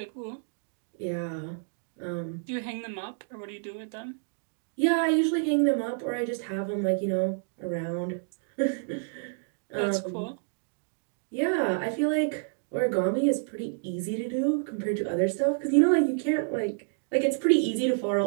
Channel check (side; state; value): left; silent; digital silence